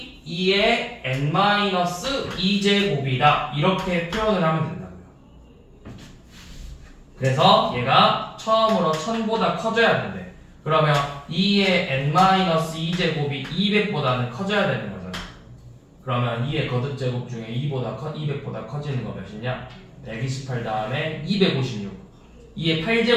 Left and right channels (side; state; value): both; identical; correlation 1.00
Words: 2의 N-2제곱이다. 이렇게 표현을 하면 된다고요. 그래서 얘가 처음으로 1000보다 커져야 된대. 그러면 2의 N-2제곱이 200보다는 커져야 되는 거잖아. 그러면 2의 거듭제곱 중에 200보다 커지는 거 몇이냐? 128 다음에 256. 2의